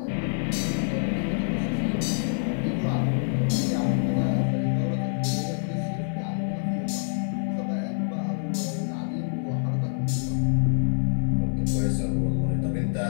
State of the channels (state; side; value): silent; right; 61 dB below the other